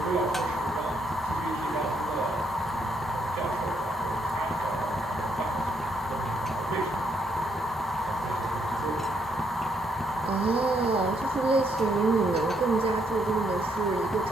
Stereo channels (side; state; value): both; normal; correlation 0.74